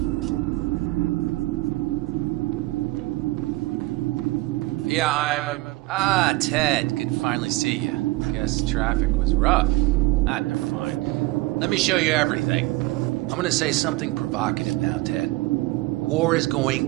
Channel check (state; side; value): quieter; left; 20.6 dB